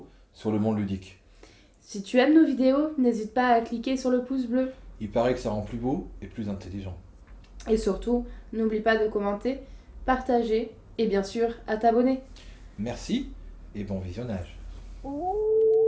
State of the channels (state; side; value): identical; both; correlation 1.00